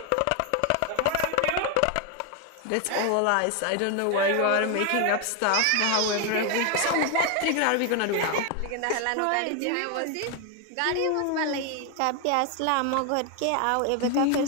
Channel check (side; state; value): both; different; correlation 0.01